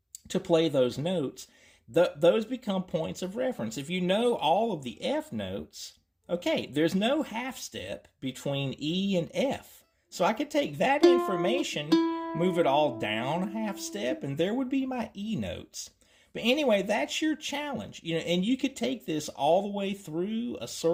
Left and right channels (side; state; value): both; identical; correlation 1.00